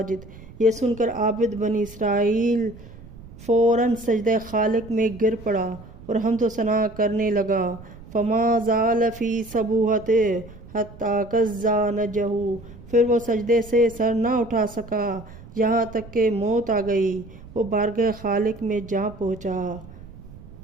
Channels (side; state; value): right; noise; rumble, 18 dB below the sound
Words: یہ سن کر عابد بنی اسرائیل فوراً سجدہ خالق میں گر پڑا اور حمد و ثنا کرنے لگا۔ فما زال فی سبوحتہ حتی کزا نجہ، پھر وہ سجدے سے سر نہ اٹھا سکا یہاں تک کہ موت آ گئی، وہ بارگاہ خالق میں جا پہنچا۔